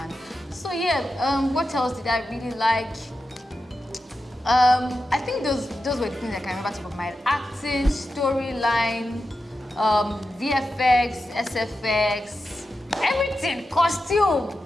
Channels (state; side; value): normal; both; correlation 0.90